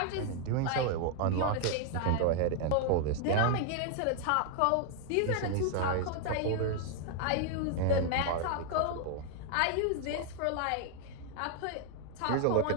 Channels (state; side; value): different; both; correlation 0.00